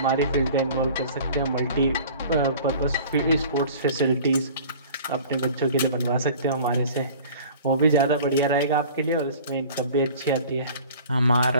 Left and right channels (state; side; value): inverted; both; correlation -0.45